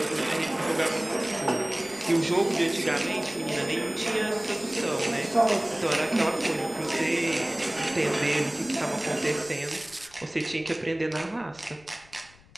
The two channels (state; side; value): noise; left; rumble, 26 dB below the sound